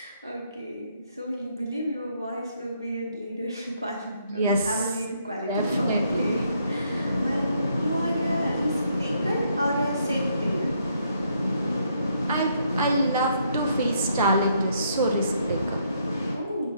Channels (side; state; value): both; inverted; correlation -0.72